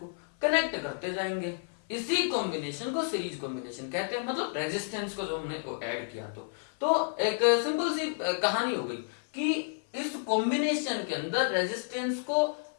कनेक्ट करते जाएंगे। इसी कॉम्बिनेशन को सीरीज कॉम्बिनेशन कहते हैं। मतलब रेजिस्टेंस को जो हमने ऐड किया, तो एक सिंपल सी कहानी हो गई कि इस कॉम्बिनेशन के अंदर रेजिस्टेंस को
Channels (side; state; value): right; silent; 57 dB below the other